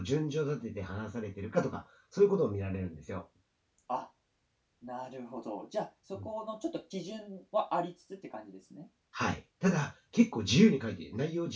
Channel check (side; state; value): both; identical; correlation 1.00